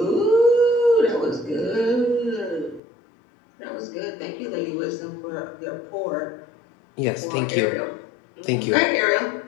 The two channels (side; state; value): right; drops out; at 2.8 s